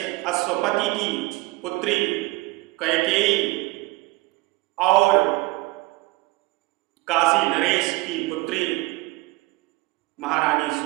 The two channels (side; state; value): left; quieter; 21.1 dB